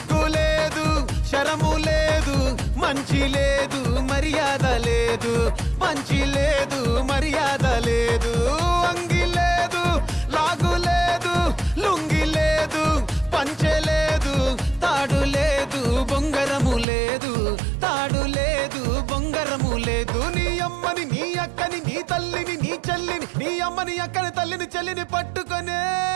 లేదు శరము లేదు మంచి లేదు మర్యాద లేదు మంచి లేదు మర్యాద లేదు అంగి లేదు లాగు లేదు లుంగి లేదు పంచె లేదు తాడు లేదు బొంగరము లేదు తాడు లేదు బొంగరము లేదు నీ అమ్మని నీ అక్కని నీ తల్లిని నీ చెల్లిని నీ అమ్మని అక్కని తల్లిని చెల్లిని పట్టుకొనే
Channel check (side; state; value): left; drops out; at 16.9 s